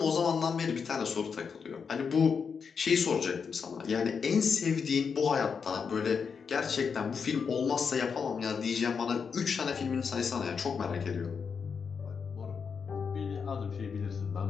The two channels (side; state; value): right; quieter; 6.0 dB